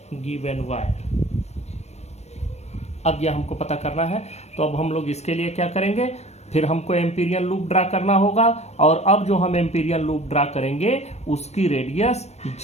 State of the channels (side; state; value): right; late; 0.31 ms